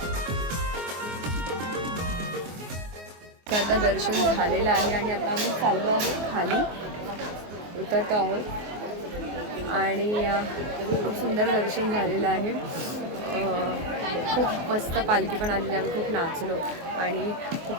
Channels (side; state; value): left; late; 24 ms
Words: आता दर्शन झालेलं आहे आणि आता आम्ही चाललो आहोत खाली, उतरतो आहोत. आणि खूप सुंदर दर्शन झालेलं आहे. खूप मस्त पालखी पण आलेली. आम्ही खूप नाचलो आणि